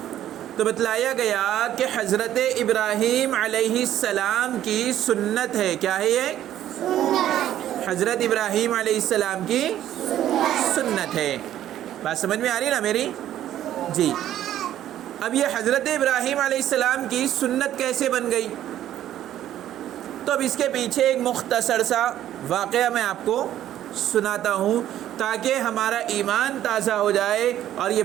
تو بتلایا گیا کہ حضرت ابراہیم علیہ السلام کی سنت ہے۔ کیا ہے یہ؟ حضرت ابراہیم علیہ السلام کی سنت ہے۔ بات سمجھ میں آ رہی نا میری؟ جی۔ اب یہ حضرت ابراہیم علیہ السلام کی سنت کیسے بن گئی؟ تو اب اس کے پیچھے ایک مختصر سا واقعہ میں آپ کو سناتا ہوں تاکہ ہمارا ایمان تازہ ہو جائے اور یہ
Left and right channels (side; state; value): left; quieter; 12.0 dB